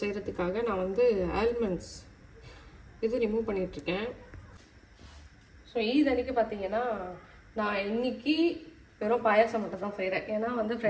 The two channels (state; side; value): identical; both; correlation 1.00